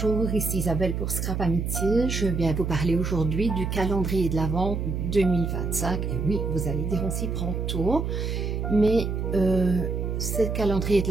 ici Isabelle pour Scrap Amitié. Je viens vous parler aujourd'hui du calendrier de l'Avent 2025. Et oui, vous allez dire on s'y prend tôt, mais ce calendrier de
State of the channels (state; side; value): noise; right; hum, 2 dB below the sound